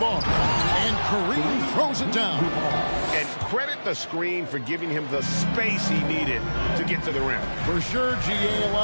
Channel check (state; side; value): inverted; both; correlation -1.00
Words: And Kareem throws it down. And credit the screen for giving him the space he needed to get to the rim. For sure, GA